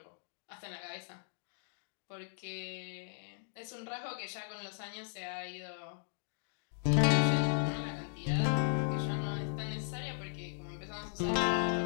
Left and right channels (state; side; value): silent; right; digital silence